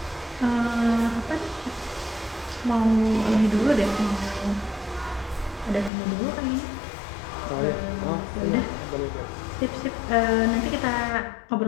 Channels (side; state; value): right; drops out; at 5.9 s